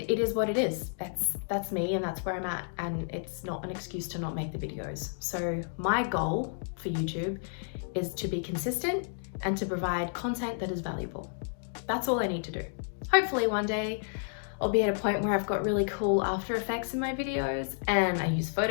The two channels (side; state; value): right; silent; digital silence